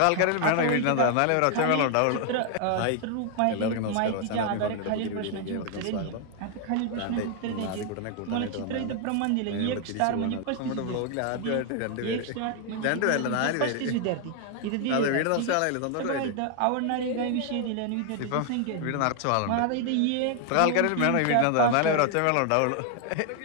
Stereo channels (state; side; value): different; both; correlation 0.00